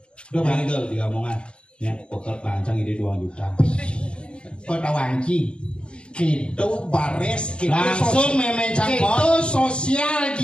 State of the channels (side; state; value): right; late; 0.054 ms